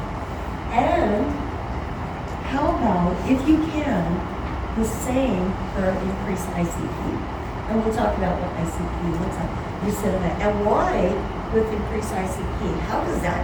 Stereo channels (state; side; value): identical; both; correlation 1.00